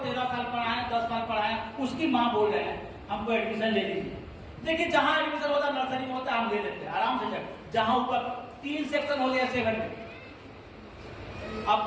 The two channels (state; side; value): identical; both; correlation 1.00